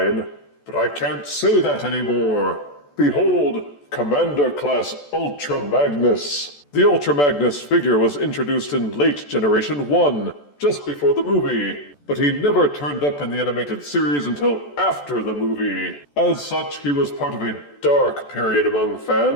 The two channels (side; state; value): right; late; 14 ms